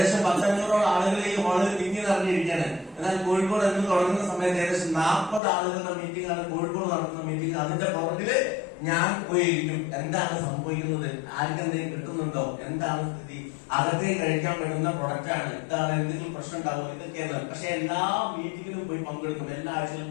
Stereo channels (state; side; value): drops out; right; at 5.4 s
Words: 100-500 ആളുകൾ ഈ ഹാളിൽ തിങ്ങി നിറഞ്ഞിരിക്കുകയാണ്. എന്നാൽ കോഴിക്കോട് എന്ന് തുടങ്ങുന്ന സമയത്ത് ഏകദേശം 40 ആളുകളുടെ മീറ്റിംഗ് ആണ് കോഴിക്കോട് നടത്തുന്ന മീറ്റിംഗ്. അതിന്റെ പുറകില് ഞാൻ പോയിരിക്കും. എന്താണ് സംഭവിക്കുന്നത്, ആർക്കെന്തെങ്കിലും കിട്ടുന്നുണ്ടോ, എന്താണ് സ്ഥിതി, അകത്തേക്ക് കഴിക്കാൻ പറ്റുന്ന പ്രൊഡക്റ്റ് ആണ്, എന്താണ് എന്തെങ്കിലും പ്രശ്നം ഉണ്ടാവും, ഇതൊക്കെയാണ്. പക്ഷെ എല്ലാ മീറ്റിംഗിലും പോയി പങ്കെടുക്കും. എല്ലാ ആഴ്ചയിലും